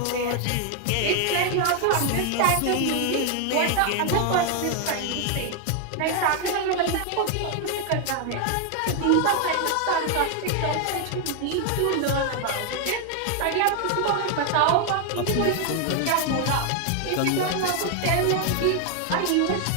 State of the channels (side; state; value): both; different; correlation 0.00